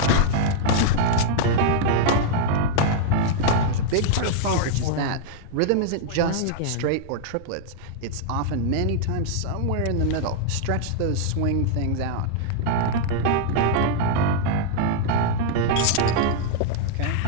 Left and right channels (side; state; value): both; different; correlation -0.01